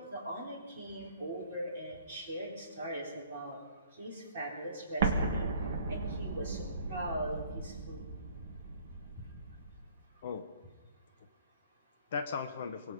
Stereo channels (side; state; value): both; inverted; correlation -0.55